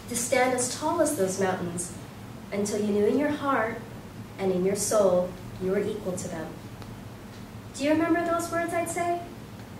To stand as tall as those mountains, until you knew in your heart and in your soul you were equal to them. Do you remember those words I'd say?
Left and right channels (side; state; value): both; identical; correlation 1.00